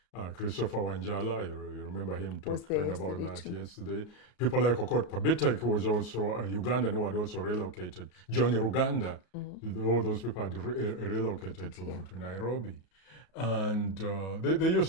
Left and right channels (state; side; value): late; right; 33 ms